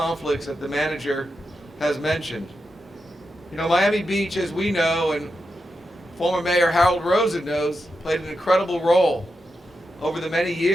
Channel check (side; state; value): both; normal; correlation 0.88